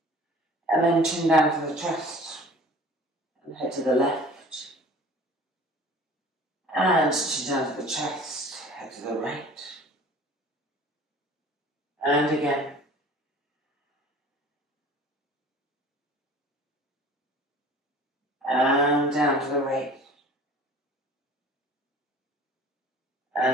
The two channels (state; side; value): normal; both; correlation 0.46